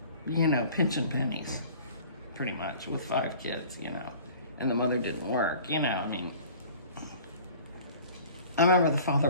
you know, pinching pennies, pretty much, with 5 kids, you know. And the mother didn't work, you know, I mean. I remember the father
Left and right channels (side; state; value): both; inverted; correlation -0.47